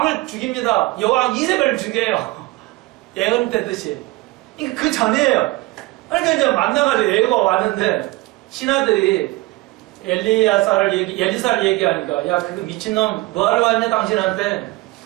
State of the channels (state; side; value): quieter; left; 20.6 dB